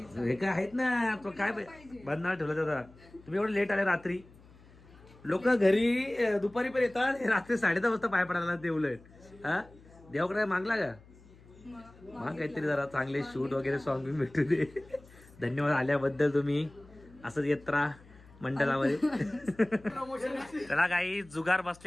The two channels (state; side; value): noise; left; hum, 24 dB below the sound